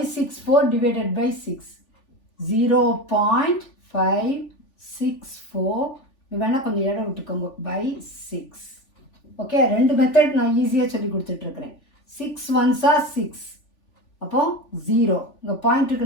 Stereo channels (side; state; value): right; late; 3.5 ms